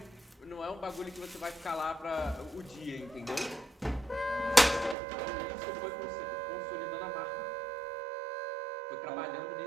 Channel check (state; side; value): drops out; left; at 5.0 s